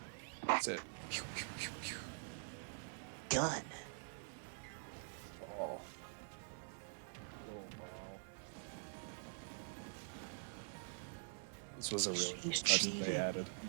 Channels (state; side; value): silent; left; digital silence